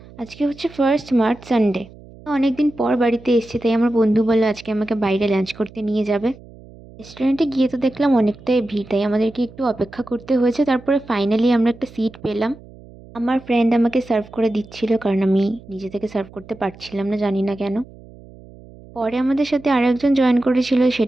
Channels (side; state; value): right; noise; hum, 21 dB below the sound